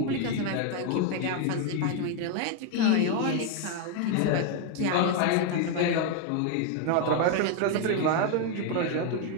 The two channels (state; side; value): different; both; correlation 0.01